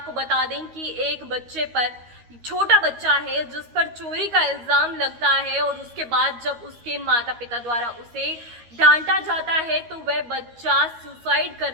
बता दें कि एक बच्चे पर, छोटा बच्चा है जिस पर चोरी का इल्जाम लगता है और उसके बाद जब उसके माता पिता द्वारा उसे डांटा जाता है तो वह बच्चा सुसाइड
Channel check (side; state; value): left; late; 13 ms